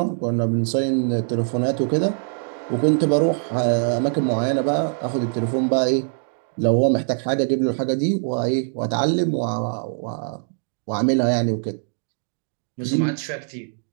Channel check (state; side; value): silent; left; 64 dB below the other